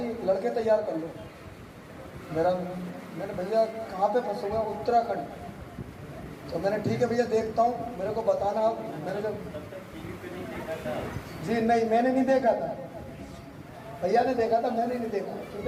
लड़के तैयार कर लो। मैंने भैया कहाँ पे फंसे हुए हैं? उत्तराखंड। तो मैंने ठीक है भैया देखता हूँ, मेरे को बताना। मैंने जब जी नहीं, मैंने नहीं देखा था, भैया ने देखा था, मैंने नहीं देखा। क्योंकि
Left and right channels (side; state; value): both; identical; correlation 1.00